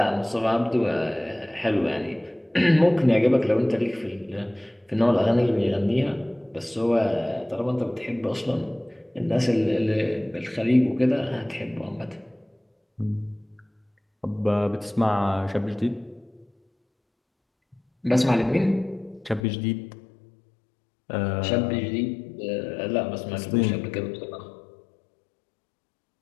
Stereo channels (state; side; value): drops out; right; at 19.5 s